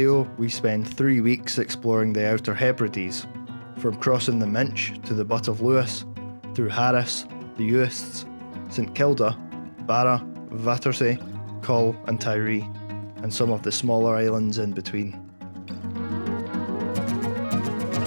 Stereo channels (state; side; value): inverted; both; correlation -1.00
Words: we spend 3 weeks exploring the Outer Hebrides, from crossing the Minch to the Butt of Lewis, through Harris, the Uist St Kilda, Barra, Vatersay, Coll and Tiree, and some of the smaller islands in between.